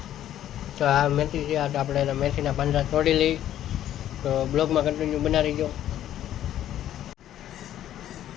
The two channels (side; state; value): right; quieter; 11.8 dB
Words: તો આ મેથી છે, આ આપણે એના મેથીના પાંદડા તોડી લઈ. તો બ્લોગમાં કન્ટિન્યુ બનાવી ગયો.